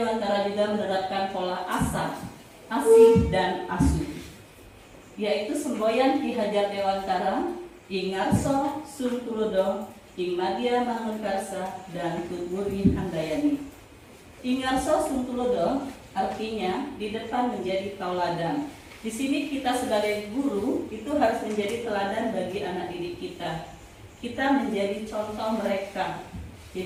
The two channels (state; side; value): identical; both; correlation 1.00